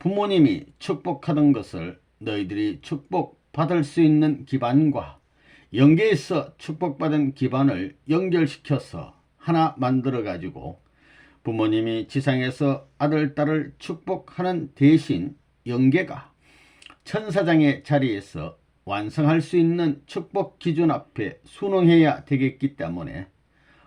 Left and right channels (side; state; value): both; identical; correlation 1.00